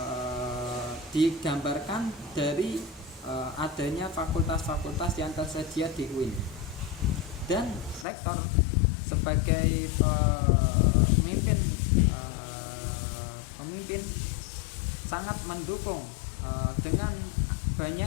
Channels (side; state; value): right; drops out; at 8.1 s